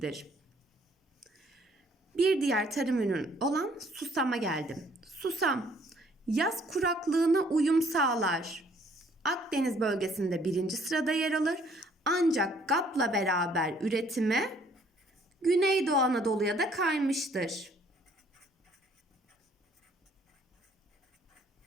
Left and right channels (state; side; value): normal; both; correlation 0.62